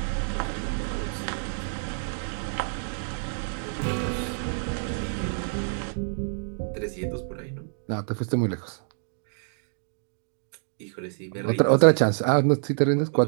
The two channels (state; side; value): silent; left; digital silence